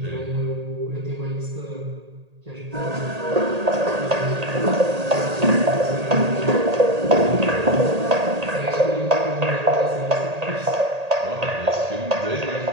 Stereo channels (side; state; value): left; late; 1.8 ms